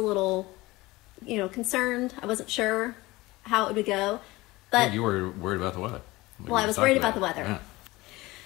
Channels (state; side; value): quieter; right; 20.4 dB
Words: concerned. I wasn't sure how it would go. But you were worried about the weather. I was worried about the weather. Yeah.